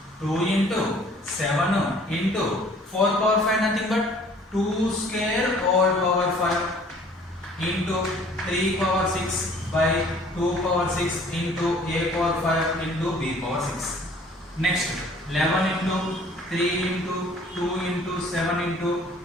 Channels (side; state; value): both; normal; correlation 0.54